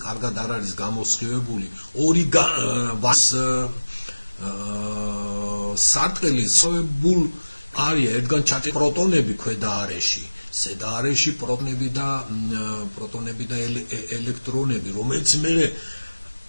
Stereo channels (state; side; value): inverted; both; correlation -1.00